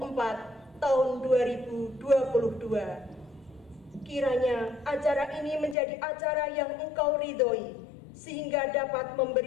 tahun 2022. Kiranya acara ini menjadi acara yang Engkau ridhoi, sehingga dapat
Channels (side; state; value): right; drops out; at 5.8 s